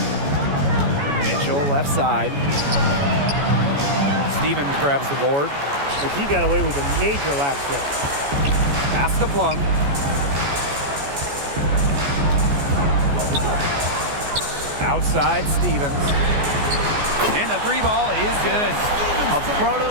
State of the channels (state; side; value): late; left; 14 ms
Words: Mitchell left side. Stevens grabs the board. But he got away with a major lapse there. Pass to Plum. Outside Stevens. And the 3 ball is good. A